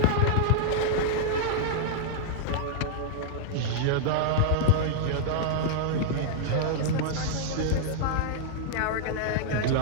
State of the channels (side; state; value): both; different; correlation -0.02